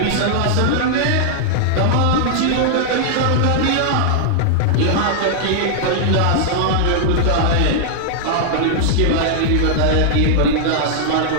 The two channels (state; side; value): different; both; correlation -0.01